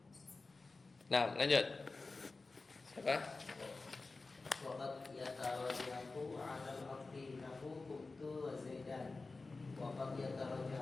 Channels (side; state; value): right; quieter; 3.7 dB